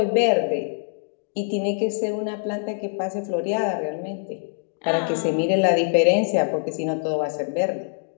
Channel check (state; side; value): silent; right; digital silence